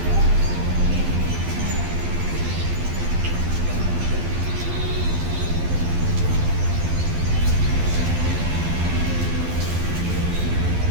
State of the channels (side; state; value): left; late; 12 ms